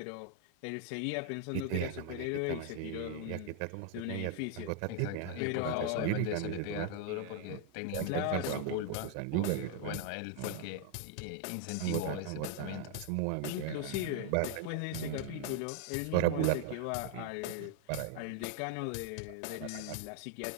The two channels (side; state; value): both; different; correlation 0.00